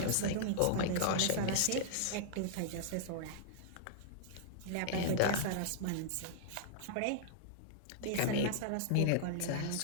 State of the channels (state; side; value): different; both; correlation -0.01